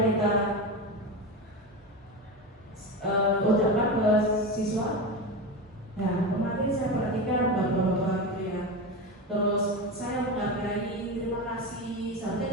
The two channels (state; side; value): normal; both; correlation 0.21